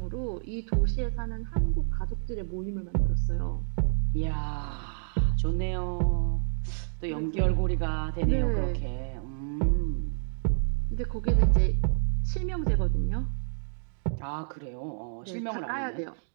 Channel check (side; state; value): left; silent; digital silence